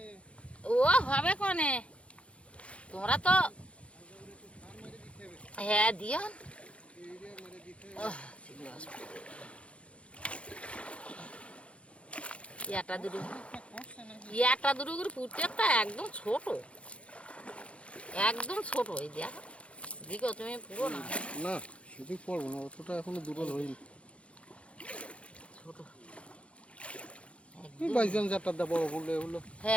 ও হবে কনে তোমরা তো হ্যাঁ দিও ইয়াটা দুটো করে ফুটছে তা একদম ছোট এই দেখ দিকে তুমি পুরো না না সেদিক পড়বো না অতটা এখনো দুটো ধরিনি ছোট বাইজান চারটা দা বড় বললে হলো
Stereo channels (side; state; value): right; late; 0.061 ms